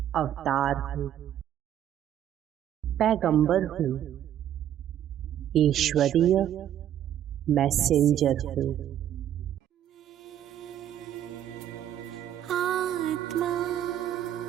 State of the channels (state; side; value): quieter; left; 11.0 dB